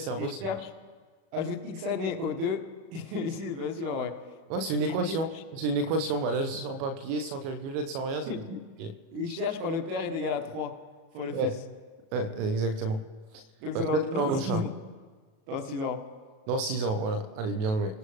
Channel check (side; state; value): left; late; 37 ms